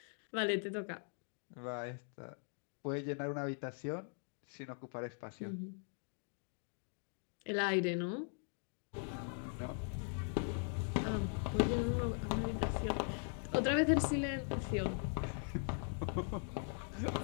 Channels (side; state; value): right; silent; 51 dB below the other